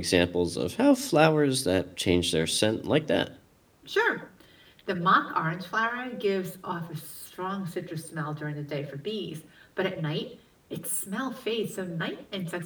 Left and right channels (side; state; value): both; identical; correlation 1.00